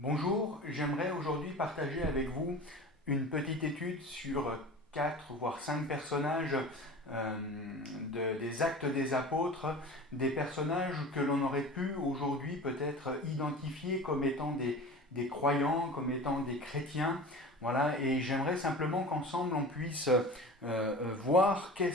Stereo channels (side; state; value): both; normal; correlation 0.36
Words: Bonjour, j'aimerais aujourd'hui partager avec vous une petite étude sur 4 voire 5 personnages des Actes des Apôtres, des personnages que l'on aurait pu aujourd'hui peut-être identifier comme étant des croyants, comme étant des chrétiens. Voilà, et j'aimerais simplement qu'ensemble on puisse voir